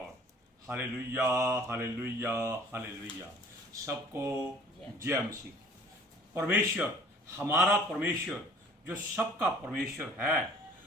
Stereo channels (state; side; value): normal; both; correlation 0.51